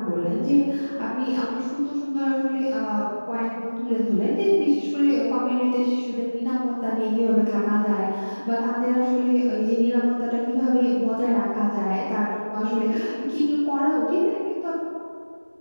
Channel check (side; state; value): both; inverted; correlation -1.00